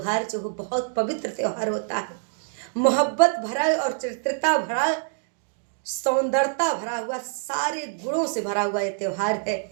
जो हो बहुत पवित्र त्यौहार होता है। मोहब्बत भरा और चरित्रता भरा, सौंदर्यता भरा हुआ, सारे गुणों से भरा हुआ ये त्यौहार है।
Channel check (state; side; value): silent; left; digital silence